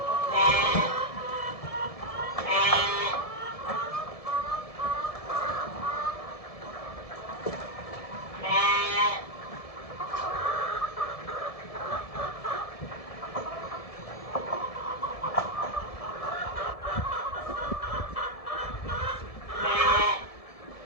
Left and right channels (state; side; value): late; right; 1.7 ms